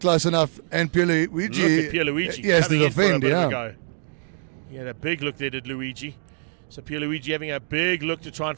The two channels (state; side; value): silent; left; digital silence